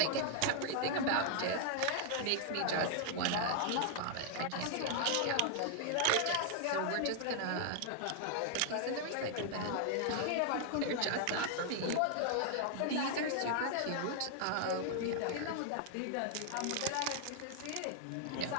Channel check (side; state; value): both; different; correlation 0.00